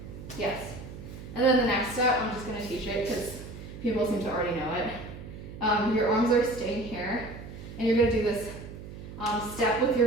Yes. And then the next step, I'm just going to teach it because people seem to already know it. Your arms are staying here, and you're going to do this step with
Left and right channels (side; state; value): right; noise; hum, 12 dB below the sound